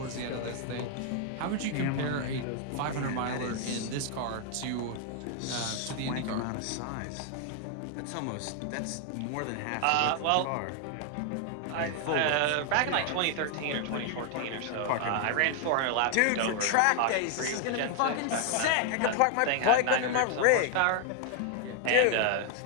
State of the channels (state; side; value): different; both; correlation 0.00